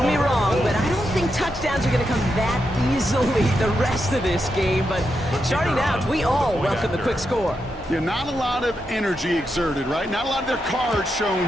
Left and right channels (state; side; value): normal; both; correlation 0.85